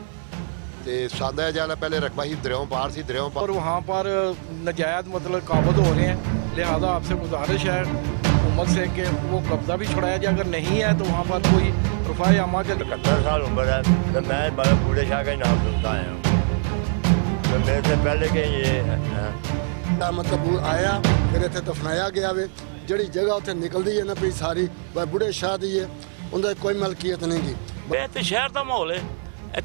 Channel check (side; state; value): left; silent; 63 dB below the other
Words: तो सांदा जाला पहले रकबा ही दरियाओं पार सी, दरियाओं पार और वहाँ पर नजायज़ मतलब काबज हो रहे हैं, लिहाजा आपसे गुजारिश है हुकूमत से कि वो कब्ज़ा भी छुड़ाया जाए, अगर नहीं है तो वहाँ पर कोई रुफाए अमा के 71 साल उम्र है तो मैं बाबा बूढ़े शाह का ही नाम सुनता आया हूँ, तो मेरे से पहले के ये मतलब आया फिर इतने दफनाया गया वे जी जगह उत्थे निकलती है ना पी सारी बूढ़े शाह की है, उनका कोई मलकीयत नहीं की। तो शहर का माहौल है,